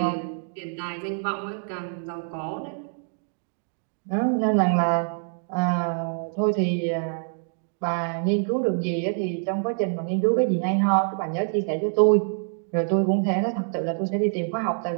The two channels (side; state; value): left; silent; 60 dB below the other